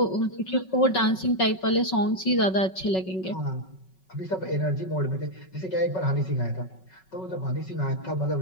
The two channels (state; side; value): late; right; 5.3 ms